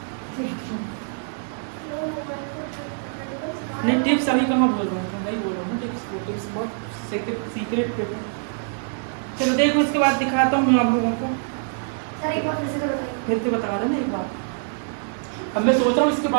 नहीं टिप्स अभी कहाँ बोल रहा हूँ, नहीं बोल रहा हूँ टिप्स, वो टिप्स बहुत सीक्रेट पेपर। चलो देखो इसके बाद दिखाता हूँ मैं आप लोगों को, सर एक बार फिर से तो बताइए। फिर से बता रहा ना एक बार। अब मैं सोच रहा हूँ इसके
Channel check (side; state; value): left; silent; digital silence